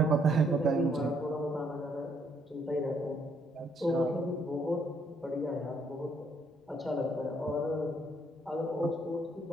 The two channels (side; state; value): both; normal; correlation 0.69